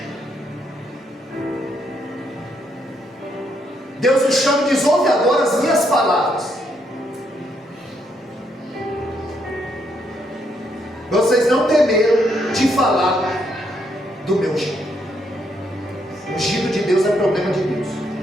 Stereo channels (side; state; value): both; normal; correlation 0.75